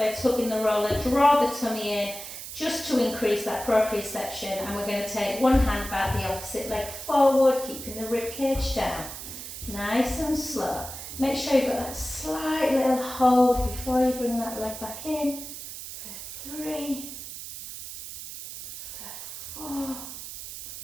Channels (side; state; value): right; noise; hiss, 10 dB below the sound